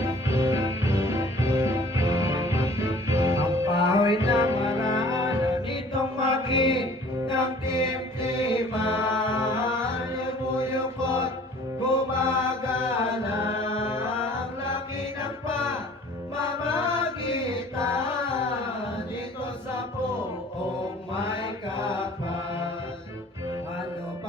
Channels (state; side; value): normal; both; correlation 0.50